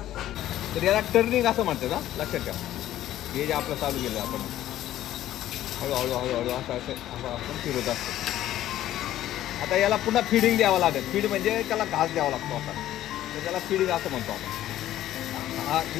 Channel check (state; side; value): quieter; right; 13.2 dB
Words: तर याला टर्निंग असं म्हणतात. हा लक्षात ठेवा, हे जे आपलं चालू केलं आपण हळूहळू हळूहळू असं असं आपण फिरत असतो. आता याला पुन्हा फीडिंग द्यावं लागेल. फीड म्हणजे त्याला घास द्यावा लागतो आपण, तर त्याला फीडिंग असं म्हणतो आपण. हा